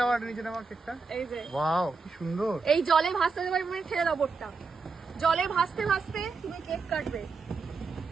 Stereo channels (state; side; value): quieter; left; 4.5 dB